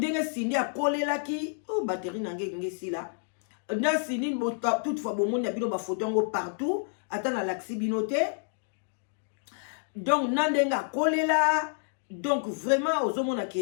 Cindy a collé la ki, oh batterie nange si la. Na Cindy, toutefois, bon monde a bino ba photo partout, attends na l'axi binote. Donc nandenga a collé la, donc vraiment aux hommes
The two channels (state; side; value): silent; right; digital silence